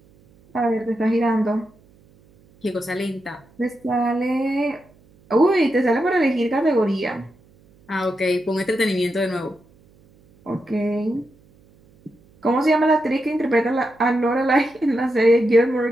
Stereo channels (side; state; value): right; noise; hum, 30 dB below the sound